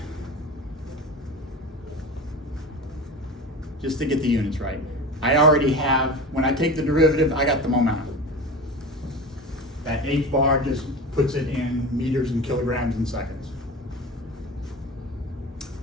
Just to get the units right. I already have, when I take the derivative, I got the momentum. That h bar just puts it in meters and kilograms and seconds.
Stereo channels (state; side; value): normal; both; correlation 0.31